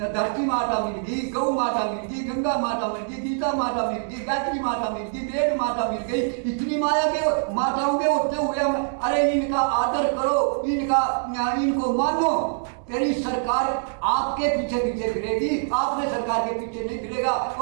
माता मिल गई, गौ माता मिल गई, गंगा माता मिल गई, गीता माता मिल गई, गायत्री माता मिल गई, वेद माता मिल गई। इतनी माया के माताओं के होते हुए हम अरे इनका आदर करो, इनको मानो। तेरी सरकार आपके पीछे पीछे फिरेगी, आपने सरकार के पीछे नहीं फिरेगा।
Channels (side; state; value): left; silent; digital silence